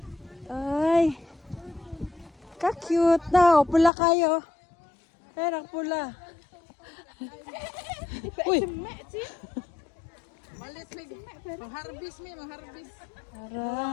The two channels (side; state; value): right; drops out; at 3.9 s